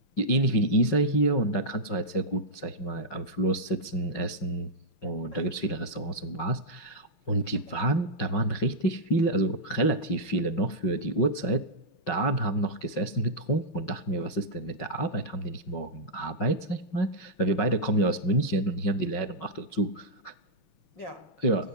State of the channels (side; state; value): right; late; 6.1 ms